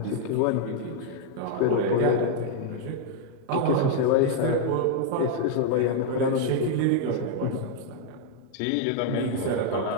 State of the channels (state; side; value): different; both; correlation 0.00